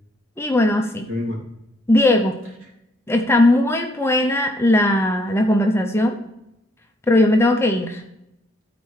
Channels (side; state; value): both; normal; correlation 0.69